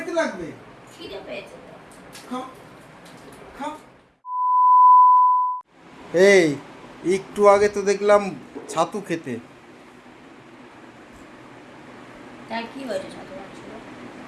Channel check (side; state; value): both; identical; correlation 1.00